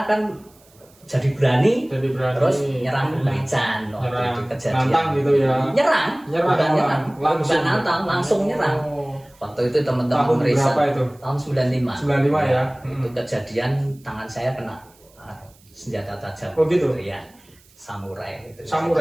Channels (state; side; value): noise; right; hiss, 29 dB below the sound